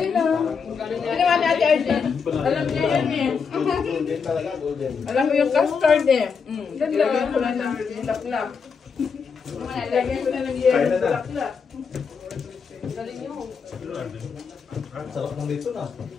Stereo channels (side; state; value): right; quieter; 5.8 dB